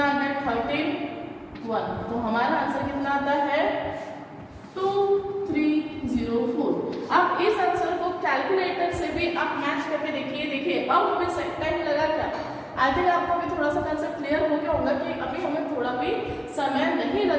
आ गया? 31। तो हमारा आंसर कितना आता है? 2304। अब इस आंसर को कैलकुलेटर से भी आप मैच करके देखिए। अब हमें सही टाइम लगा क्या? आई थिंक आपको अभी थोड़ा सा कंसेप्ट क्लियर हो गया होगा कि अभी हमें थोड़ा भी समय नहीं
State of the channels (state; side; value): identical; both; correlation 1.00